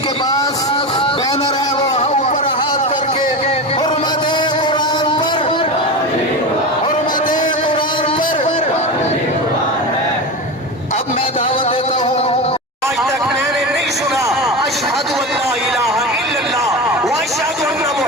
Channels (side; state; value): both; normal; correlation 0.23